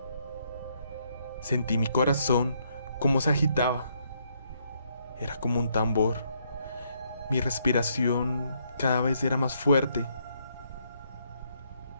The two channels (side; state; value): both; inverted; correlation -0.72